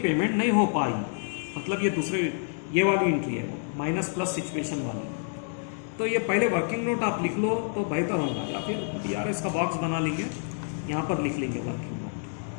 नहीं हो पाई, मतलब ये दूसरे ये वाली एंट्री है, माइनस प्लस सिचुएशन वाली। तो ये पहले वर्किंग नोट आप लिख लो तो बेहतर होगा, या फिर BRS का बॉक्स बना लेंगे, यहाँ पर लिख लेंगे working note.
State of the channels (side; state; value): right; silent; 59 dB below the other